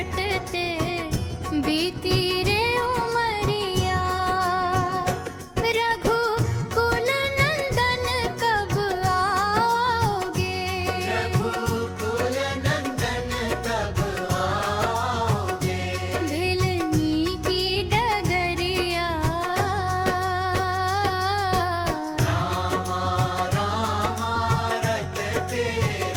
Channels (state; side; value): identical; both; correlation 1.00